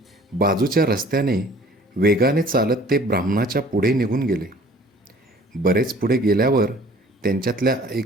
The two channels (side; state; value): both; normal; correlation 0.51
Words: बाजूच्या रस्त्याने वेगाने चालत ते ब्राह्मणाच्या पुढे निघून गेले. बरेच पुढे गेल्यावर त्यांच्यातल्या एक